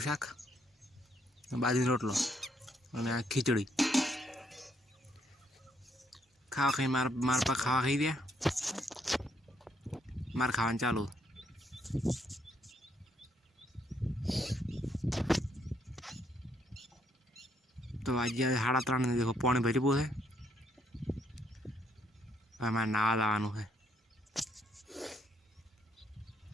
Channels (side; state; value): both; normal; correlation 0.73